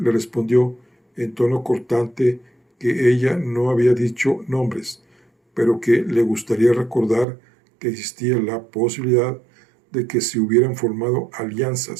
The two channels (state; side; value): drops out; left; at 7.2 s